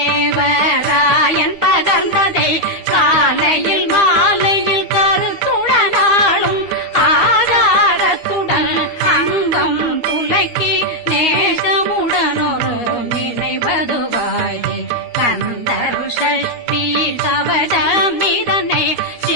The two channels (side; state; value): right; late; 12 ms